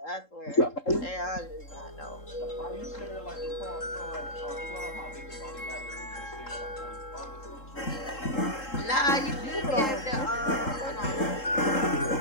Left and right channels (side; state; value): right; late; 3.7 ms